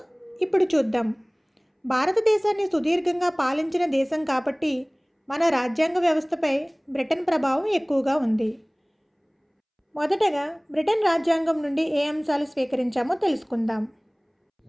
ఇప్పుడు చూద్దాం. భారతదేశాన్ని సుదీర్ఘంగా పాలించిన దేశం కాబట్టి మన రాజ్యాంగ వ్యవస్థపై బ్రిటన్ ప్రభావం ఎక్కువగా ఉంది. మొదటగా బ్రిటన్ రాజ్యాంగం నుండి ఏ అంశాలు స్వీకరించామో తెలుసుకుందాం.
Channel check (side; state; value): both; identical; correlation 1.00